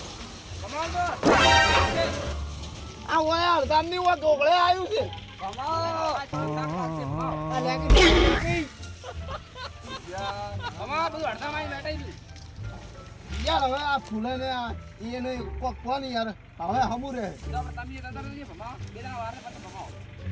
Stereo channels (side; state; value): both; identical; correlation 1.00